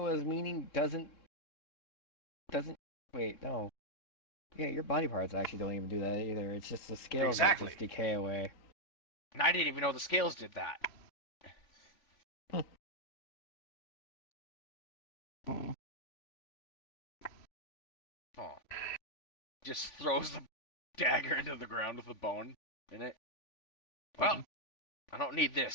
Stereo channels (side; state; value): right; late; 3.5 ms